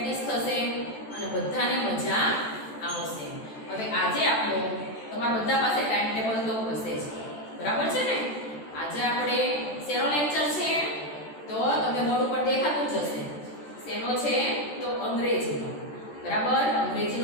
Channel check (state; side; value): late; right; 14 ms